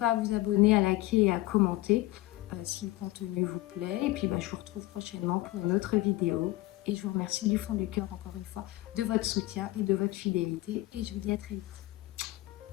à vous abonner, à liker et à commenter si le contenu vous plaît. Et puis, je vous retrouve prochainement pour une autre vidéo. Et je vous remercie du fond du cœur, encore une fois, de votre soutien et de votre fidélité. Et je vous dis à très vite.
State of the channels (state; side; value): quieter; right; 17.8 dB